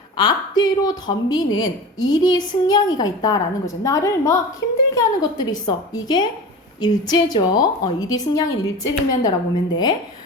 앞뒤로 덤비는 일이 승냥이가 있다라는 거죠. 나를 막 힘들게 하는 것들이 있어. 이게 일제죠. 일이 승냥이는 일제를 의미한다라고 보면 돼.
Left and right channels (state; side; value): normal; both; correlation 0.32